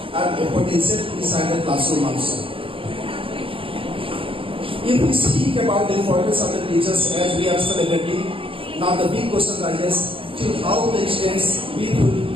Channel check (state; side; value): late; left; 0.26 ms